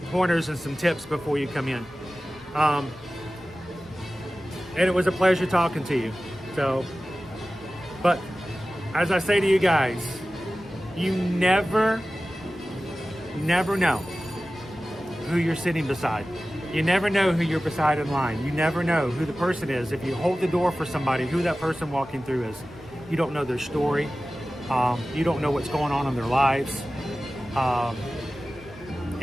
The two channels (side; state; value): both; normal; correlation 0.96